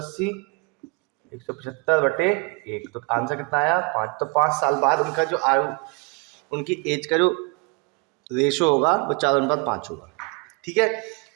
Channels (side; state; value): left; quieter; 30.7 dB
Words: 175 बटे 1, तो आंसर कितना आया 5। तो 5 साल बाद उनका जो आयु, उनकी एज का जो रेशो होगा वो 4:5 होगा। ठीक है,